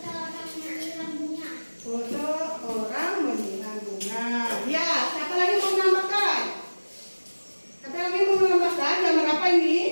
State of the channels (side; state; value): both; inverted; correlation -1.00